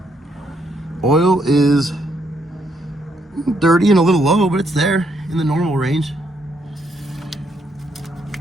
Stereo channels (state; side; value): normal; both; correlation 0.75